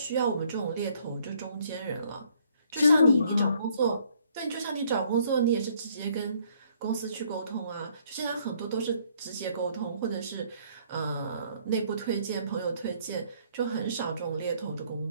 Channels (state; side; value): inverted; both; correlation -0.65